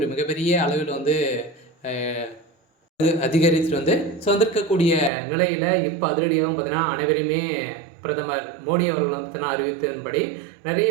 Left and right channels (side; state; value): left; drops out; at 5.1 s